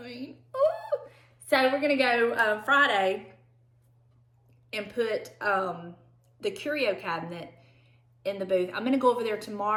mean, ooh. So we're gonna go Friday and put the curio cabinet in the booth. I'm gonna go over there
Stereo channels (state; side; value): identical; both; correlation 1.00